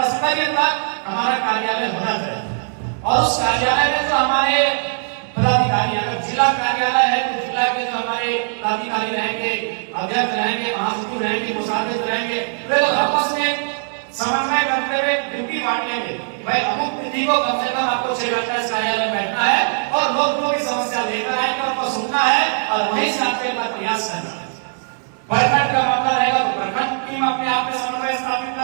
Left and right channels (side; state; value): left; silent; 66 dB below the other